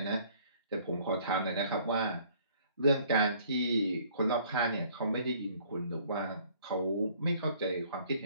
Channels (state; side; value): inverted; both; correlation -0.58